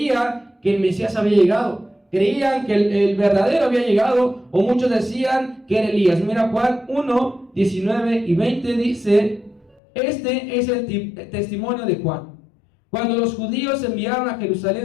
que el Mesías había llegado, creían que el verdadero había llegado, o muchos decían que era Elías. Mira, Juan 1, 19 y 20 dice, este es el testimonio de Juan. Cuando los judíos enviaron a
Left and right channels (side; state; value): right; drops out; at 9.8 s